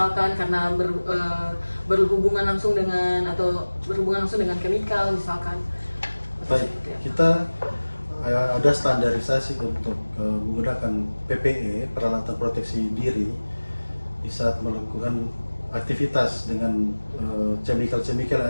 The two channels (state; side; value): inverted; both; correlation -1.00